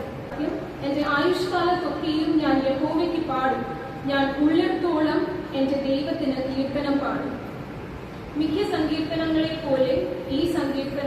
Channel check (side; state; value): both; identical; correlation 1.00